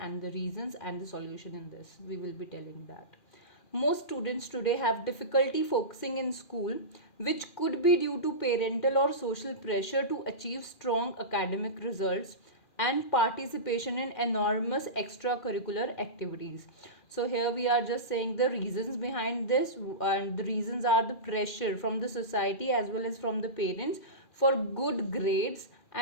the reasons and the solution in this. We will be telling that. Most students today have difficulty focusing in school, which could be due to parental or social pressure to achieve strong academic results and participation in enormous extracurricular activities. So here we are just saying the reasons behind this, and the reasons are the pressure from the society as well as from the parents for good grades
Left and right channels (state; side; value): late; right; 2.4 ms